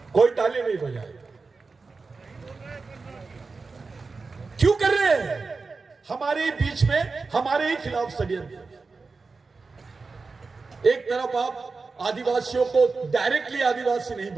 कोई ताली नहीं बजाए। क्यों कर रहे हैं? हमारे बीच में, हमारे ही खिलाफ षड्यंत्र। एक तरफ आप आदिवासियों को डायरेक्टली आदिवासी नहीं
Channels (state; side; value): quieter; left; 4.2 dB